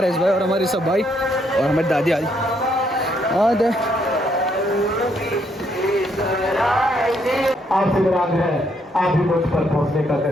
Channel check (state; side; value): normal; both; correlation 0.72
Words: यस भाई और हमारे सब भाई और हमारी दादी आ रही। और आपसे विराम है, आप भी मुझ पर पहुंचने का